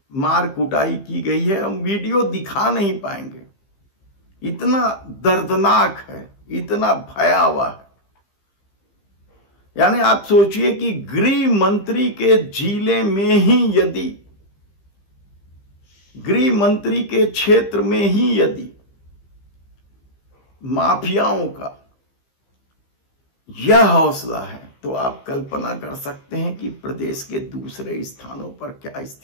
मार कुटाई की गई है हम वीडियो दिखा नहीं पाएंगे। इतना दर्दनाक है, इतना भयावह है। यानी आप सोचिए कि गृह मंत्री के जिले में ही यदि, गृह मंत्री के क्षेत्र में ही यदि माफियाओं का यह हौसला है तो आप कल्पना कर सकते हैं कि प्रदेश के दूसरे स्थानों पर क्या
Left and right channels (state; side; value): late; right; 15 ms